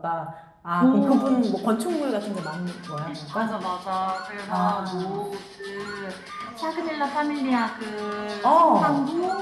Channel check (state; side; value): identical; both; correlation 1.00